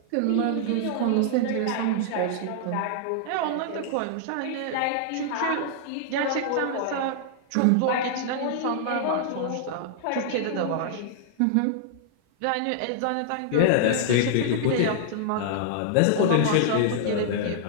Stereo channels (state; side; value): different; both; correlation -0.01